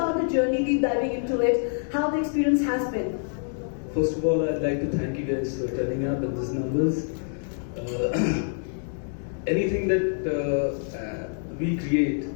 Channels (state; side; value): silent; right; 61 dB below the other